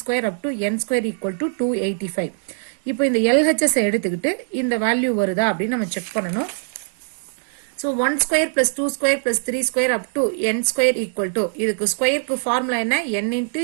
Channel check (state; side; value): silent; left; digital silence